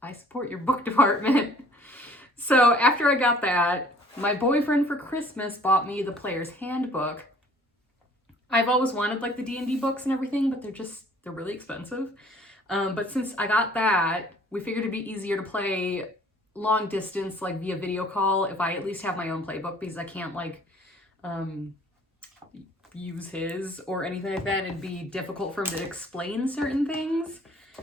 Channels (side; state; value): both; normal; correlation 0.54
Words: I support your book department. So after I got that, my boyfriend for Christmas bought me the Player's Handbook. I've always wanted like the D&D books and everything, but they're really expensive. But since I got that, we figured it'd be easier to play long distance, like via video call, if I at least have my own playbook, because I can't like use his or anything like that. It'd be difficult for him to explain certain things.